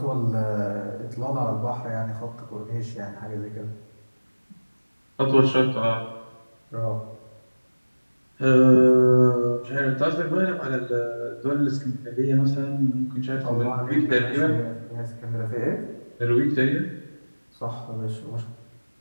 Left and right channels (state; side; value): inverted; both; correlation -1.00